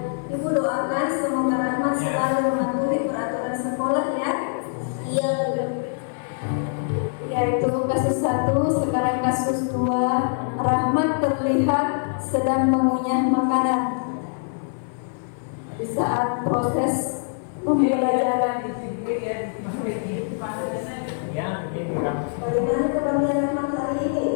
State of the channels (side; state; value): right; silent; 59 dB below the other